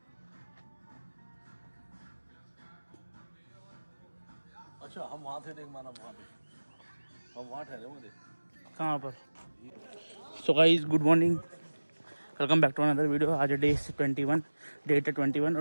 अच्छा हम वहाँ थे, नहीं माना वहाँ पे, हम वहाँ ठहरे हुए थे। कहाँ पर? So guys good morning, welcome back to another video. आज डे 21, डेट है 21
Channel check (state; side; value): inverted; both; correlation -1.00